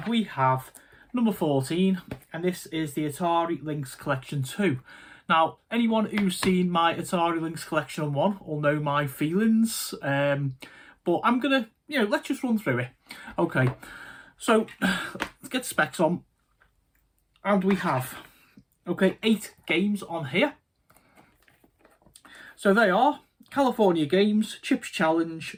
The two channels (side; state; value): both; identical; correlation 1.00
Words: we have number 14 and this is the Atari Lynx Collection 2. Now, anyone who's seen my Atari Lynx Collection 1 will know my feelings, but I'm gonna, let's just run through it. Okay, so let's get the specs on and we have, 8 games on here. So they are California Games, Chips